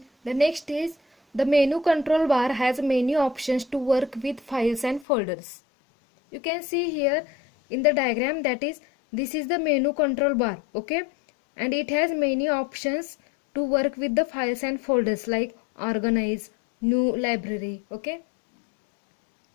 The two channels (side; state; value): right; drops out; at 5.1 s